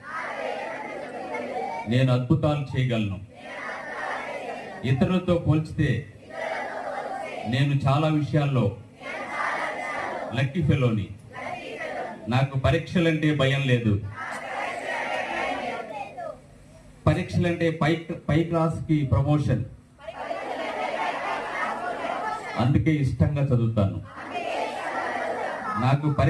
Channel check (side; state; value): both; identical; correlation 1.00